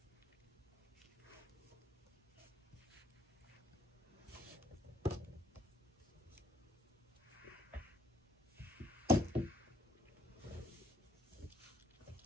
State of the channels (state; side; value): normal; both; correlation 0.65